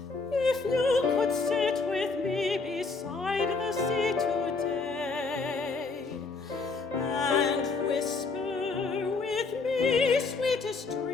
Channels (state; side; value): quieter; right; 4.1 dB